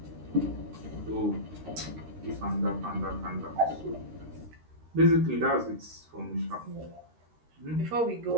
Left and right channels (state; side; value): late; left; 13 ms